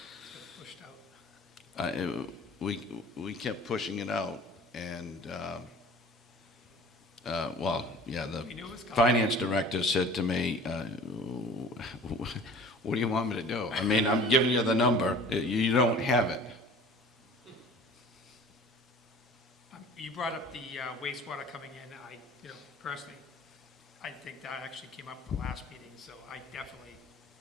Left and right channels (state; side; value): normal; both; correlation 0.45